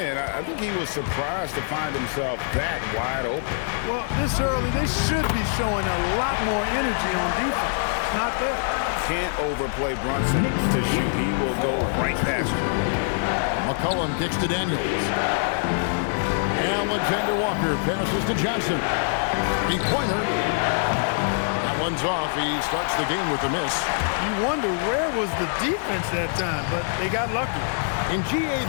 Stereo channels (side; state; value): right; silent; 62 dB below the other